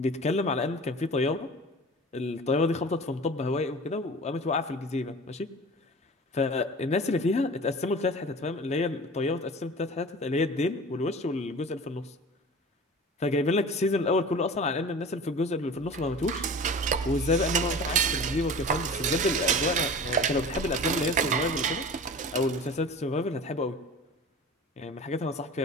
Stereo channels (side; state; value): both; normal; correlation 0.38